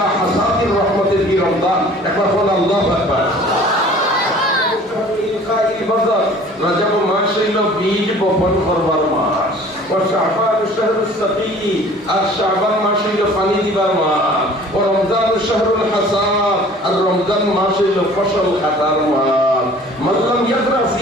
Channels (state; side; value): normal; both; correlation 0.49